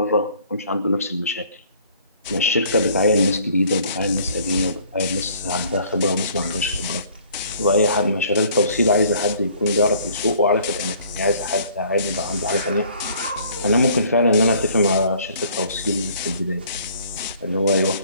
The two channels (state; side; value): inverted; both; correlation -0.57